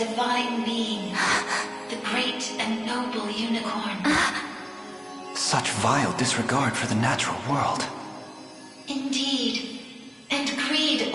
divine being, the great and noble unicorn. Such vile disregard for the natural world. Indeed, and greed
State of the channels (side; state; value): both; identical; correlation 1.00